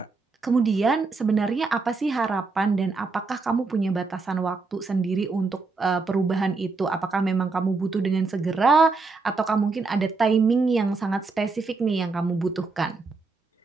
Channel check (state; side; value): quieter; left; 4.0 dB